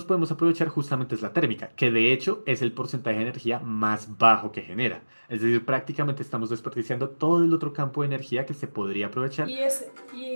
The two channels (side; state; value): both; inverted; correlation -1.00